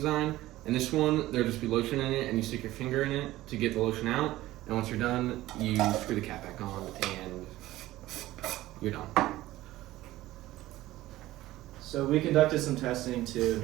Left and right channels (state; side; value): quieter; left; 16.3 dB